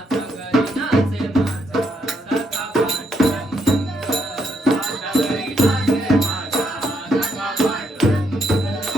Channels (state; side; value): normal; both; correlation 0.75